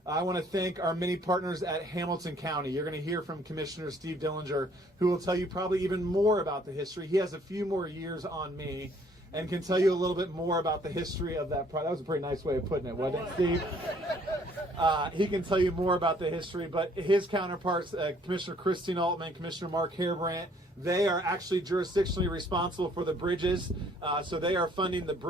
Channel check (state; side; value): normal; both; correlation 0.61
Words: I want to thank our many partners at Hamilton County. You're going to hear from Commissioner Steve Dillinger, who will tell you probably even more about the history. He has a few more years on me and can tell you a little bit more about the history of that project. That was a pretty nice way of putting it, wasn't it, Steve? He can tell you more about the history, but his counterparts, Commissioner Christine Altman, Commissioner Mark Hairbrandt, they are actually jurisdictionally responsible for the bridges. So they are funding the